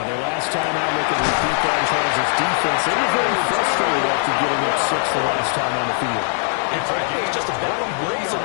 the last time I look at repeat that as far as its defense, they were very frustrated after getting up 6 the last time on the field. And frankly, it's just a battle of wills in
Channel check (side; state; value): right; silent; 55 dB below the other